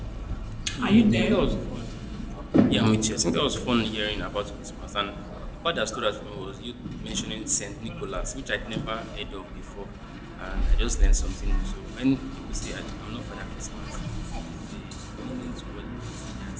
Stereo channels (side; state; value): both; identical; correlation 1.00